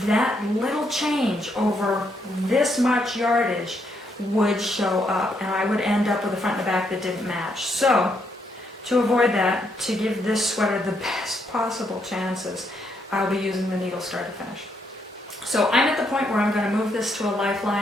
that little change over this much yardage would show up, and I would end up with a front and a back that didn't match. So, to avoid that, to give this sweater the best possible chances, I'll be using the needle start to finish. So I'm at the point where I'm going to move this to a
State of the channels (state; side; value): normal; both; correlation 0.76